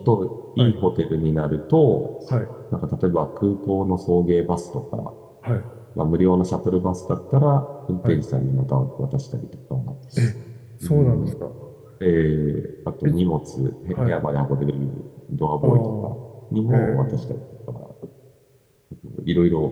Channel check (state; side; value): identical; both; correlation 1.00